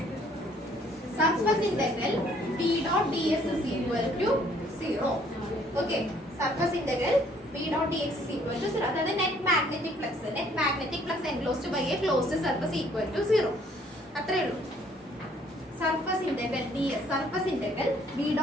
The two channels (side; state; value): both; normal; correlation 0.62